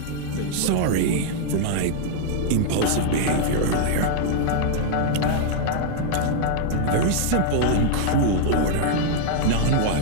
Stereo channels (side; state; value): both; different; correlation -0.01